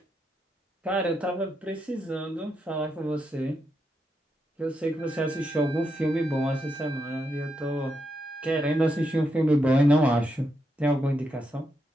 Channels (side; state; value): both; normal; correlation 0.83